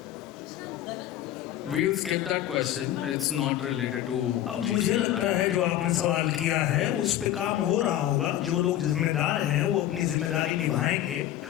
We'll skip that question. It's not related to. अब मुझे लगता है जो आपने सवाल किया है उस पे काम हो रहा होगा। जो लोग जिम्मेदार हैं वो अपनी जिम्मेदारी निभाएंगे,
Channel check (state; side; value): quieter; right; 12.6 dB